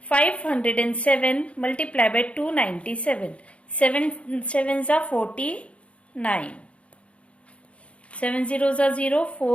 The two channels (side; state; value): right; late; 0.062 ms